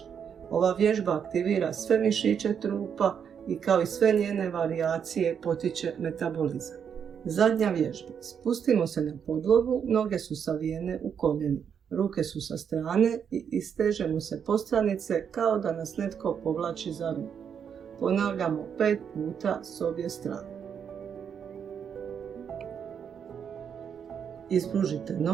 Ova vježba aktivira sve mišiće trupa i kao i sve njene varijacije potiče metabolizam. Zadnja vježba. Spustimo se na podlogu, noge su savijene u koljenima. Ruke su sa strane i istežemo se postranice kao da nas netko povlači za ruku. Ponavljamo 5 puta s obje strane. Ispružite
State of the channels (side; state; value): left; quieter; 7.6 dB